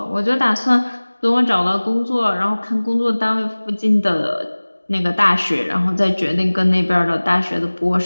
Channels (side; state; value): both; inverted; correlation -1.00